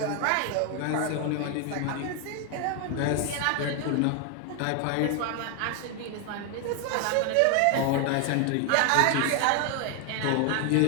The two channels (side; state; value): both; different; correlation 0.01